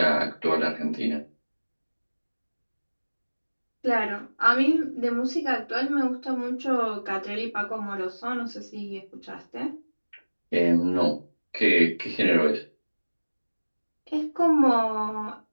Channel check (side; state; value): both; inverted; correlation -1.00